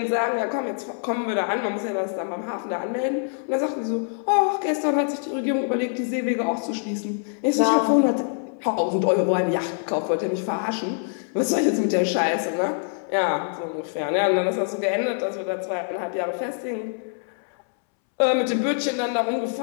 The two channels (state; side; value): silent; right; 62 dB below the other